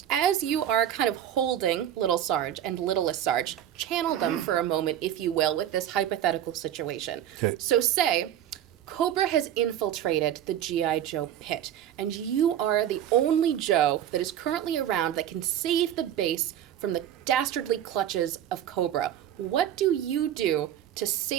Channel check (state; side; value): quieter; left; 10.9 dB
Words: As you are kind of holding Little Sarge and Littlest Sarge, channel them for a moment, if you will, with this hypothetical situation. Okay. So say Cobra has infiltrated the G.I. Joe pit, and you are the only Joe that is currently around that can save the base from the dastardly clutches of Cobra. What do you do to